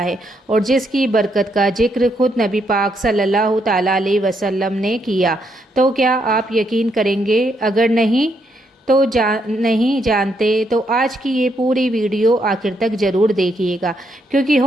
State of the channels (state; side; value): normal; both; correlation 0.76